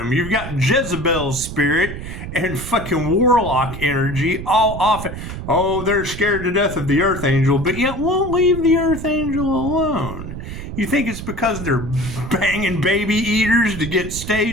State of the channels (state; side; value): noise; right; rumble, 9 dB below the sound